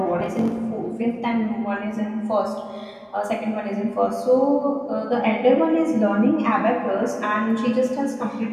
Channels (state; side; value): identical; both; correlation 1.00